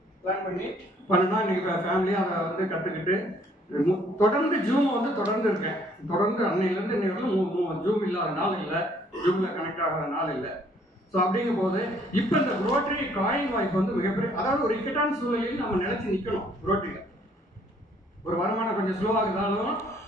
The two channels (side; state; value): both; normal; correlation 0.63